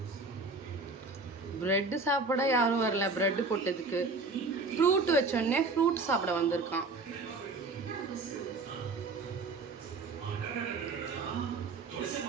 ப்ரெட்டு சாப்பிட யாரும் வரல, ப்ரெட்டு போட்டதுக்கு. ஃப்ரூட் வச்சோடனே ஃப்ரூட் சாப்பிட வந்திருக்கான்.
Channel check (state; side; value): quieter; left; 3.6 dB